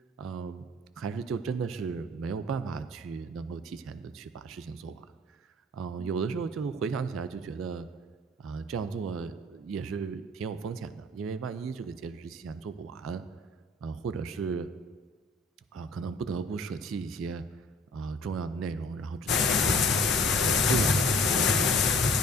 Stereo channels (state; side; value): normal; both; correlation 0.52